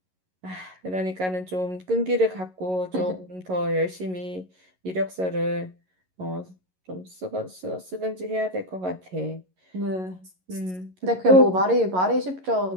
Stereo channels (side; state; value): left; late; 11 ms